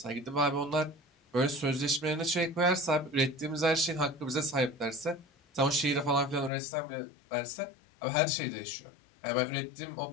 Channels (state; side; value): drops out; right; at 6.5 s